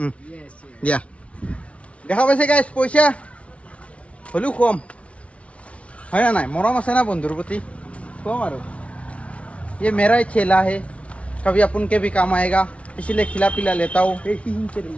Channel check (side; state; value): right; late; 0.063 ms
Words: ইয়েস দিয়া দেখা পাইছে গাইছ, পইচা হ'লেও কম হয় না নাই? মৰম আছে না বন্ধুৰ প্ৰতি, কম আৰু। ये मेरा ही चेला है, कभी अपन के भी काम आएगा, इसलिए खिला पिला लेता हूँ।